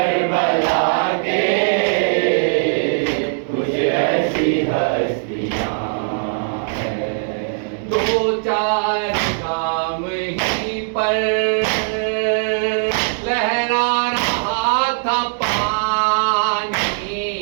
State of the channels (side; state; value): left; silent; 66 dB below the other